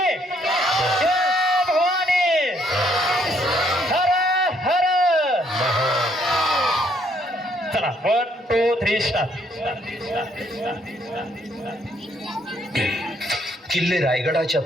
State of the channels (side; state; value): both; normal; correlation 0.69